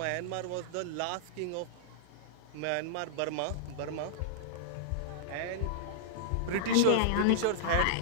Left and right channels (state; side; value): different; both; correlation -0.01